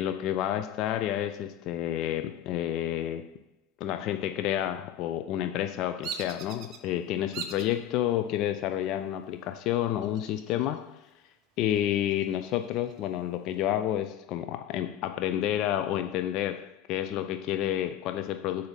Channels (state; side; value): quieter; right; 10.9 dB